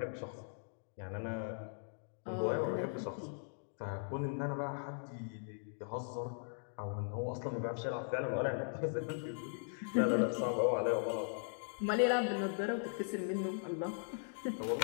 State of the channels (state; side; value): silent; right; digital silence